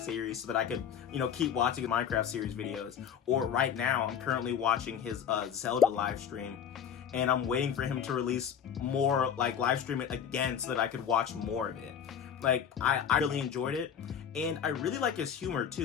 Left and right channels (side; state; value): right; quieter; 8.2 dB